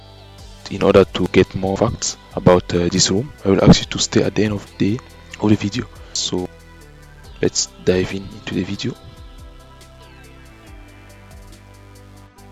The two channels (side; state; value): both; identical; correlation 1.00